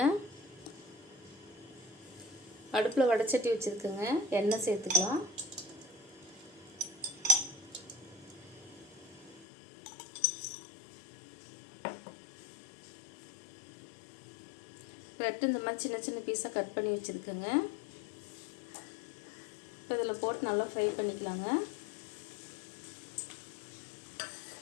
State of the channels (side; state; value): right; drops out; at 9.5 s